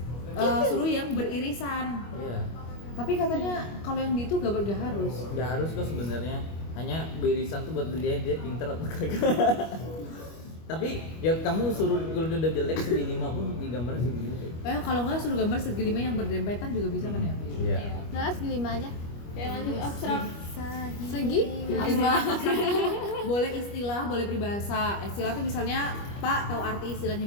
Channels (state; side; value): late; right; 25 ms